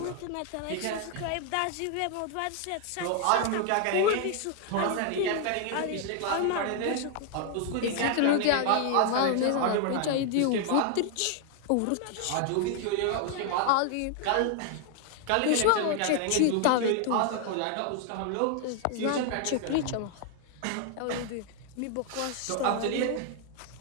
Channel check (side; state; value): both; different; correlation 0.00